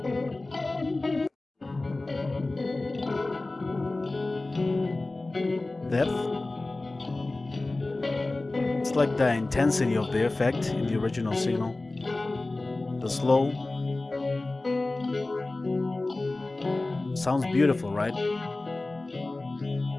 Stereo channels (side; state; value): right; quieter; 3.0 dB